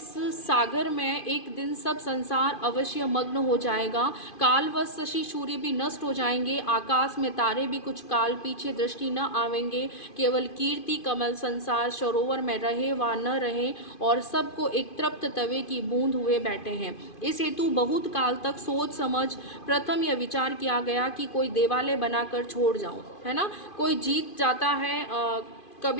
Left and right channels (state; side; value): late; right; 2.5 ms